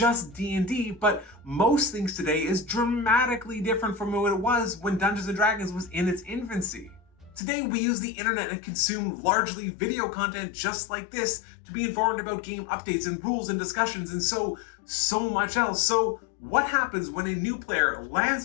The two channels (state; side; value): drops out; right; at 7.4 s